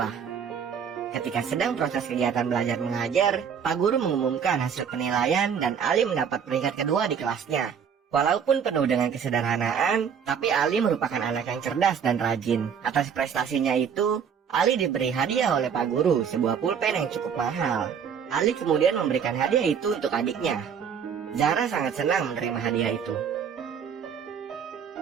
Ketika sedang proses kegiatan belajar mengajar, Pak Guru mengumumkan hasil penilaian dan Ali mendapat peringkat kedua di kelasnya. Walaupun penuh dengan kesederhanaan, tapi Ali merupakan anak yang cerdas dan rajin. Atas prestasinya itu, Ali diberi hadiah oleh Pak Guru, sebuah pulpen yang cukup mahal. Ali kemudian memberikan hadiah itu untuk adiknya. Zahra sangat senang menerima hadiah itu.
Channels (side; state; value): left; quieter; 7.3 dB